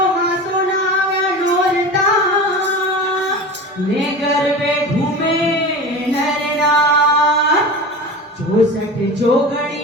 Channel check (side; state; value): both; normal; correlation 0.31